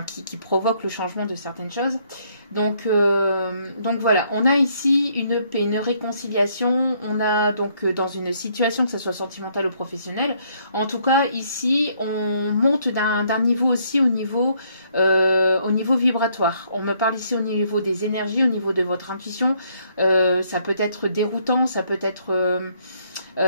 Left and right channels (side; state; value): both; inverted; correlation -0.68